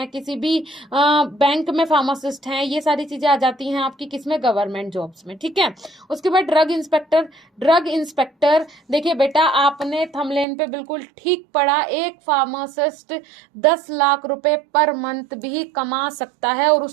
किसी भी बैंक में फार्मासिस्ट हैं, ये सारी चीजें आ जाती हैं आपकी किसमें, गवर्नमेंट जॉब्स में। ठीक है। उसके बाद ड्रग इंस्पेक्टर देखिए बेटा, आपने थंबनेल पे बिल्कुल ठीक पढ़ा, एक फार्मासिस्ट 10 लाख रुपए पर मंथ भी कमा सकता है और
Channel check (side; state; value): left; drops out; at 10.5 s